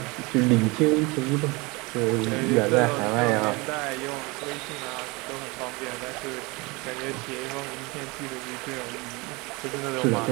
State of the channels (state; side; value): quieter; left; 25.6 dB